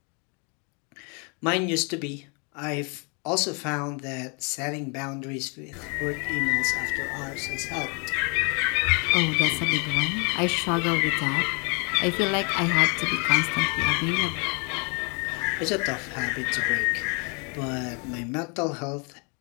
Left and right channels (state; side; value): quieter; right; 34.5 dB